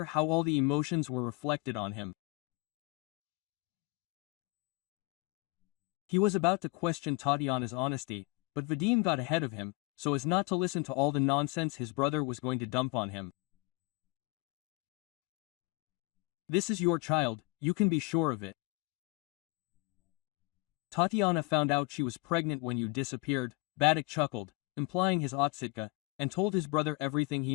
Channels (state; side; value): quieter; right; 24.6 dB